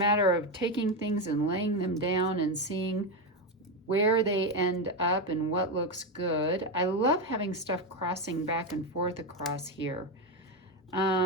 of taking things and laying them down and seeing where they end up and what looks good. I love having stuff crossing back and forth across here.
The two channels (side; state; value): both; normal; correlation 0.10